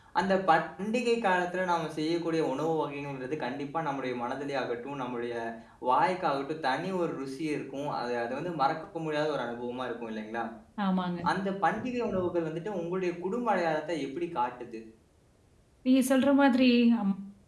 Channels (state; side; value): identical; both; correlation 1.00